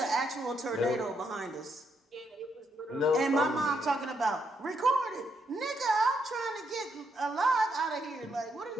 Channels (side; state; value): both; normal; correlation 0.77